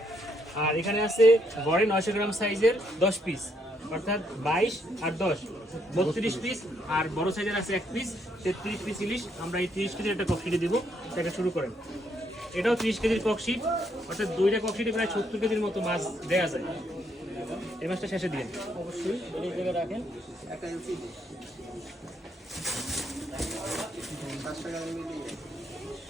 আর এখানে আছে গড়ে 900 গ্রাম সাইজের 10 পিস, অর্থাৎ 22 আর 10 32 পিস। আর বড় সাইজের আছে 1 পিস, 33 পিস ইলিশ। আমরা এই 30 কেজির একটা ককশিটে দিব। এটা শুরু করেন। এটাও 30 কেজির ককশিট, অর্থাৎ দুইটা ককশিটে প্রায় 70 কেজির মতো মাছ দেয়া যায়। এই মাছটা শেষে দিন অবশ্যই, এই জায়গায় রাখেন।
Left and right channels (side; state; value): both; normal; correlation 0.73